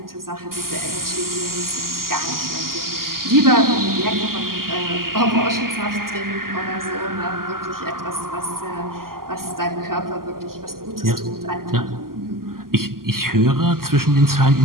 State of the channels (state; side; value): late; left; 0.92 ms